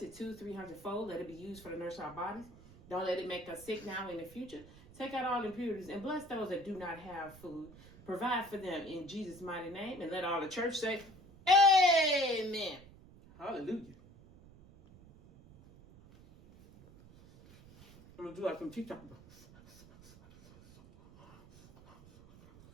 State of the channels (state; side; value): noise; right; rumble, 21 dB below the sound